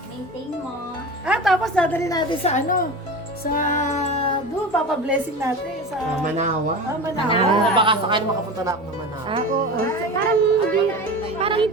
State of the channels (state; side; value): normal; both; correlation 0.30